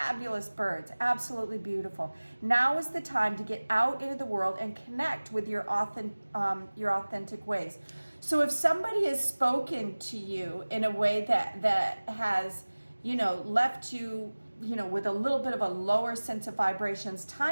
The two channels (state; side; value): inverted; both; correlation -1.00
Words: birds, absolutely beautiful. Now is the time to get out into the world and connect with your authentic ways. So if somebody has spoken to you in a way that has, left you, with a little bit of a lower sense of vibrations,